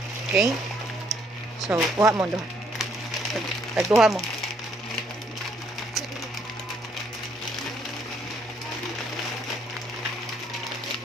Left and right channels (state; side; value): normal; both; correlation 0.68